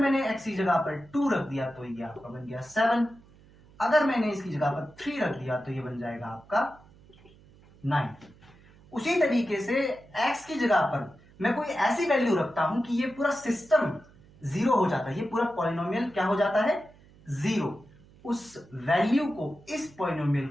x की जगह पर 2 रख दिया तो ये आपका बन गया 7। अगर मैंने इसकी जगह पर 3 रख दिया तो ये बन जाएगा आपका 9। उसी तरीके से x की जगह पर मैं कोई ऐसी वैल्यू रखता हूं कि ये पूरा सिस्टम 0 हो जाता है, ये पूरा पॉलिनोमियल क्या हो जाता है? 0। उस वैल्यू को इस पॉलिनोमियल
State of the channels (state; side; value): noise; right; hum, 26 dB below the sound